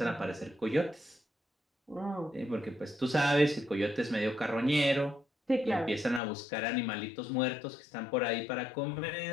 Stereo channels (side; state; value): right; drops out; at 6.2 s